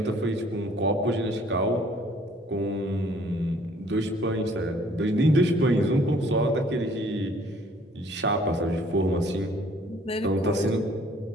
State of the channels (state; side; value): normal; both; correlation 0.59